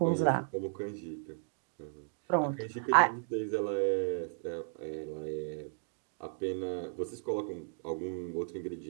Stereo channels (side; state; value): left; silent; digital silence